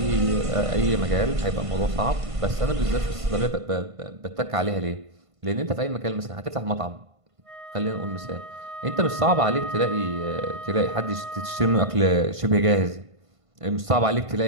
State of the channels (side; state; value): left; late; 1.5 ms